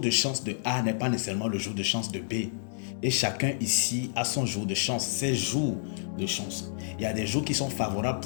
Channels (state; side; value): silent; right; digital silence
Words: chance de A n'est pas nécessairement le jour de chance de B. Et chacun ici a son jour de chance, ses jours de chance. Il y a des jours qui sont favorables